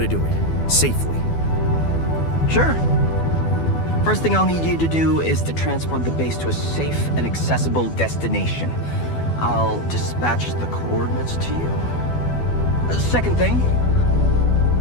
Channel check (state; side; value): late; right; 12 ms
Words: do it, safely. Sure. First thing I'll need you to do is to transport the base to a safe and accessible destination. I'll dispatch the coordinates to you. Second thing,